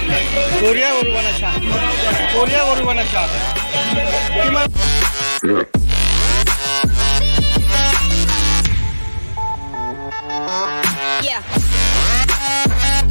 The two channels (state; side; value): inverted; both; correlation -1.00